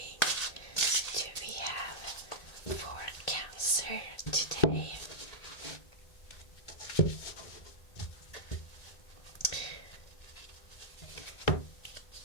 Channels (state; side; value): late; right; 1.8 ms